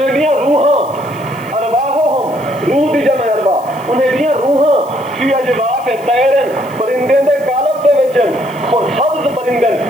بھی روحاں ارواحہم روح دی جمع ارواح انہیں بھی روحاں فی اجواف طیرن پرندے دے قالب دے وچن اور سبز پرندن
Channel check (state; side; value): noise; left; hiss, 24 dB below the sound